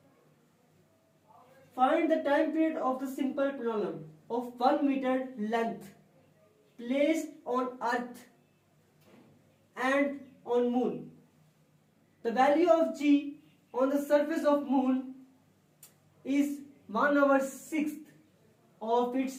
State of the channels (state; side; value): identical; both; correlation 1.00